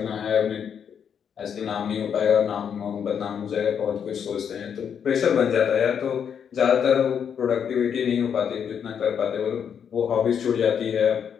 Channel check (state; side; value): quieter; right; 7.8 dB